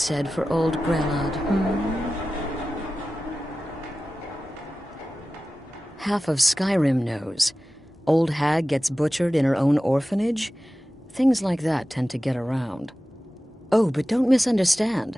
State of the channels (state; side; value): normal; both; correlation 0.95